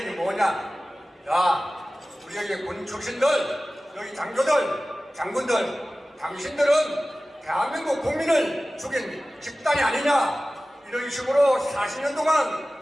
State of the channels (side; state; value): both; normal; correlation 0.97